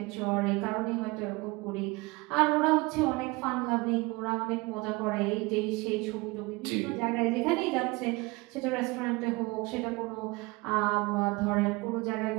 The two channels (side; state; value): left; quieter; 24.3 dB